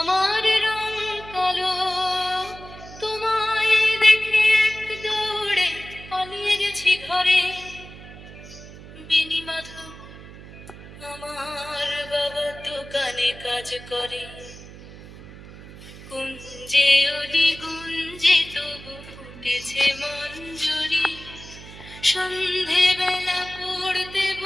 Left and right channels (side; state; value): right; noise; hum, 16 dB below the sound